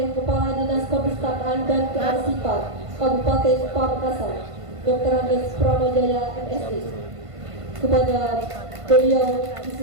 Kepala Dinas Perpustakaan dan Kearsipan Kabupaten Pamekasan, Dr. Andes Pramajaya MSc. Kepada beliau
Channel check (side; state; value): left; late; 1.5 ms